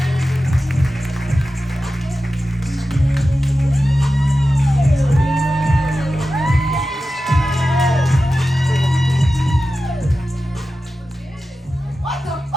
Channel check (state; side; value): normal; both; correlation 0.93